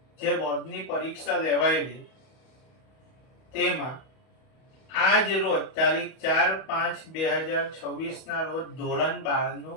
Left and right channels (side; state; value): right; late; 31 ms